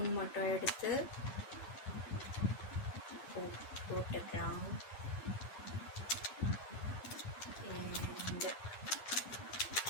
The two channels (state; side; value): late; right; 9.8 ms